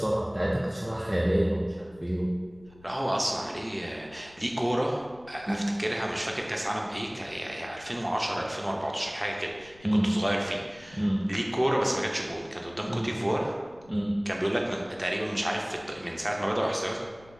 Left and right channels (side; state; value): left; noise; rumble, 25 dB below the sound